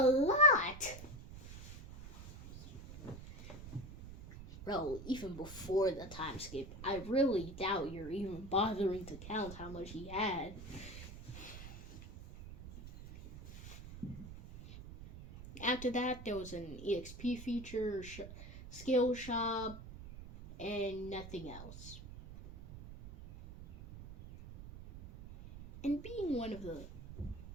lot! Bro, even before the time skip, I really doubt you're even bothering to count how much he had. After that, there was an EXP feature, skill shop, and nothing else. And being one of the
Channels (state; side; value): noise; right; rumble, 13 dB below the sound